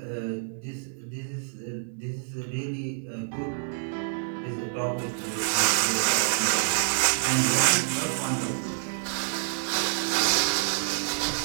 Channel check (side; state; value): left; silent; digital silence